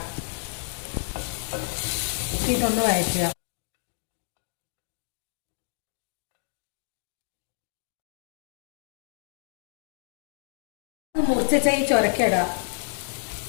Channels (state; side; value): silent; right; digital silence